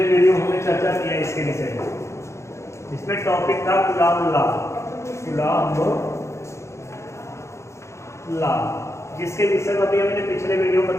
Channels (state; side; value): late; right; 0.14 ms